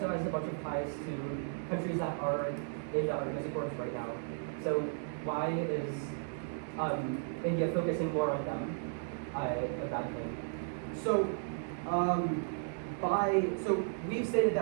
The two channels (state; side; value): silent; left; digital silence